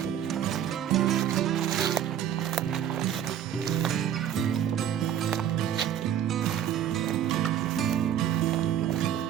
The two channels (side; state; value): left; quieter; 10.0 dB